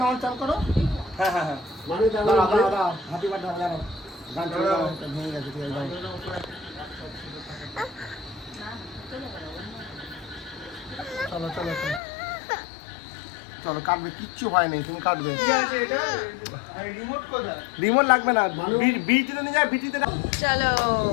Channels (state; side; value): drops out; right; at 12.0 s